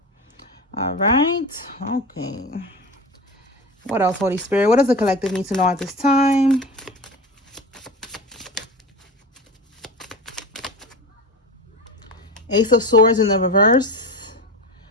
All right. Okay. What else, Holy Spirit? What does the collective need to know at this time? Ace of Swords in the reverse.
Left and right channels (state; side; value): normal; both; correlation 0.28